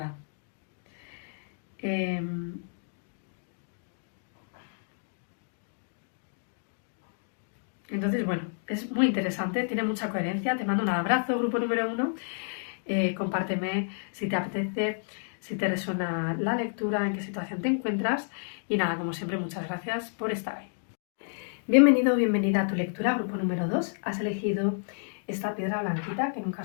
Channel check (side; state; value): right; silent; digital silence